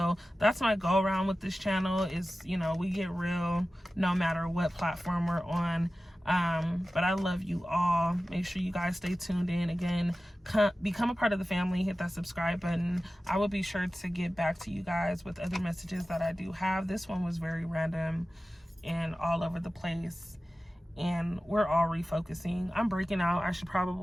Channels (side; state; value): both; normal; correlation 0.95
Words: that's my go around with this channel is, we get real no matter what platform we're on. But I love you all. Make sure you guys stay tuned in. Again, become a part of the family. Hit that subscribe button. I will be sure to get back to you guys with other messages that I do have. This one was very random and all over the place, and we're all refocusing. I'm breaking out. I should